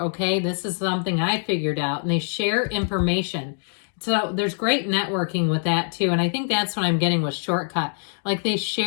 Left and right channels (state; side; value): silent; right; digital silence